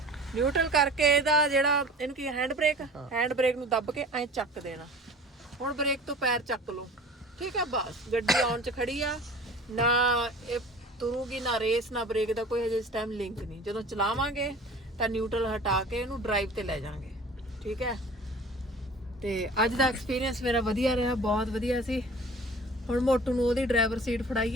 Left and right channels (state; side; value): normal; both; correlation 0.43